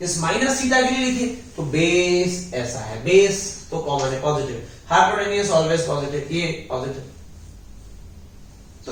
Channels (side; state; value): both; identical; correlation 1.00